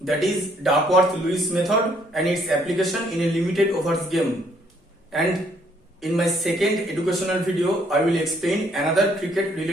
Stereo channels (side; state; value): both; normal; correlation 0.67